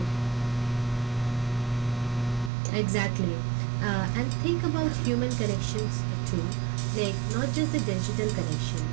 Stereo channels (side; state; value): left; drops out; at 2.5 s